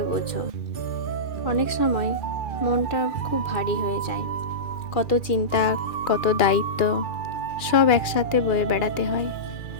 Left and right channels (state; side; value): late; right; 2.4 ms